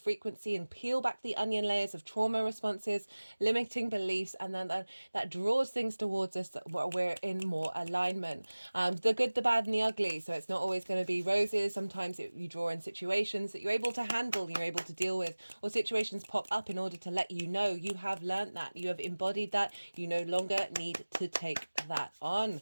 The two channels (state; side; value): inverted; both; correlation -1.00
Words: and peel back the onion layers of trauma responses, limiting beliefs, and then that draws things towards us that we're in more alignment. The good, the bad, and the ugly. So it's not always going to be roses. Sometimes you draw in situations that you're able to handle, you're able to deal with, or situations pop up in order to let you know you have learned that, you have embodied that, you no longer need to take that on.